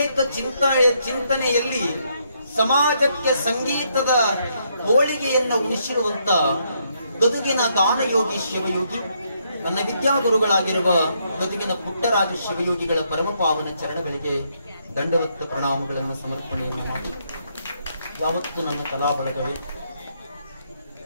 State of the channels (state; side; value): inverted; both; correlation -0.74